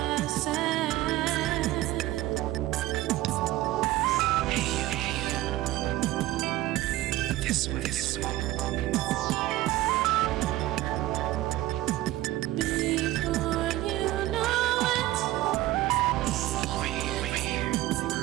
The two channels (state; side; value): quieter; left; 16.4 dB